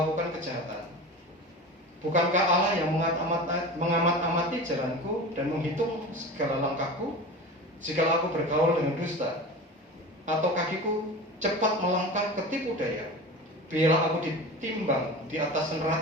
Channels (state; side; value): normal; both; correlation 0.32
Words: kejahatan? Bukankah Allah yang mengamat-amati jalanku dan menghitung segala langkahku? Jikalau aku bergaul dengan dusta, atau kakiku cepat melangkah ke tipu daya, biarlah aku ditimbang di atas